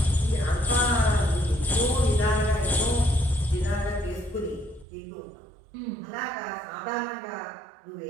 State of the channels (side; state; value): left; drops out; at 4.9 s